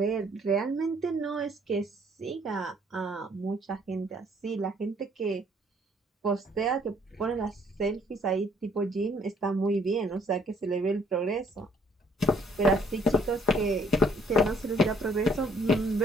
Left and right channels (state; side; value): normal; both; correlation 0.63